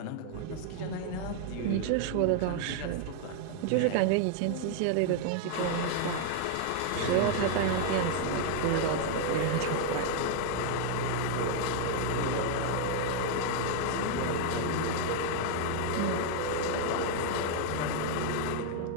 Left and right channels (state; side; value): different; both; correlation 0.00